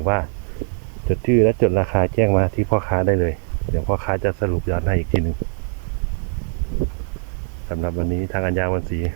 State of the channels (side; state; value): left; silent; digital silence